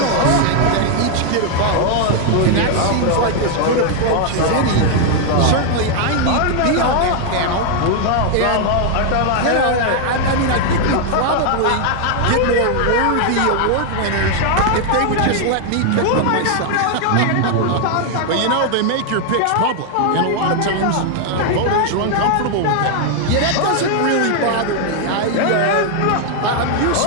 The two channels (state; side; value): different; both; correlation 0.00